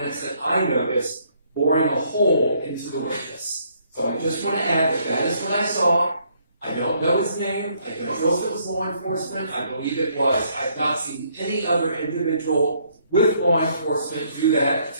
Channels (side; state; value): both; inverted; correlation -0.68